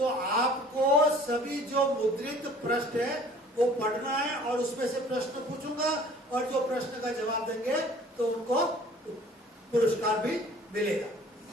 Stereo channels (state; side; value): normal; both; correlation 0.50